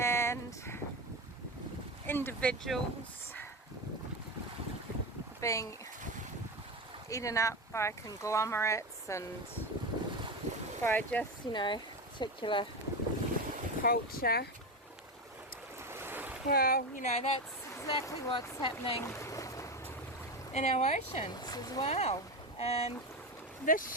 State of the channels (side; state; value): both; normal; correlation 0.18